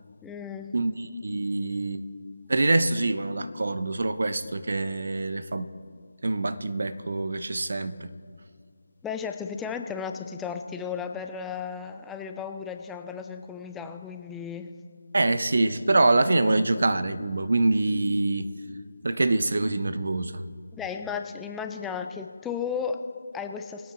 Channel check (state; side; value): inverted; both; correlation -0.88